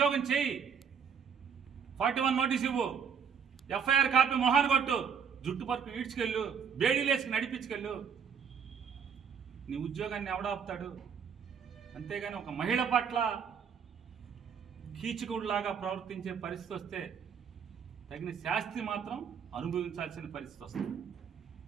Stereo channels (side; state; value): left; quieter; 7.1 dB